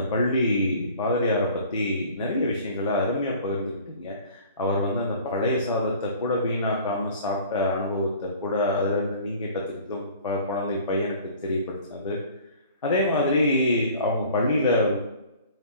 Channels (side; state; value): both; inverted; correlation -0.48